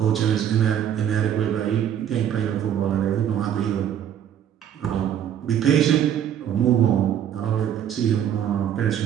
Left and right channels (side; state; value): left; quieter; 9.8 dB